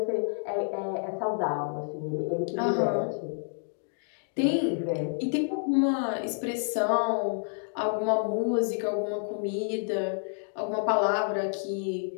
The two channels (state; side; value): silent; right; digital silence